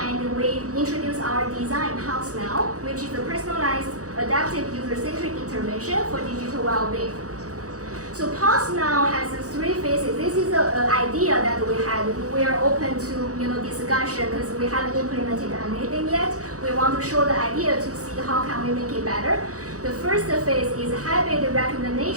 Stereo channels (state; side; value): late; left; 0.66 ms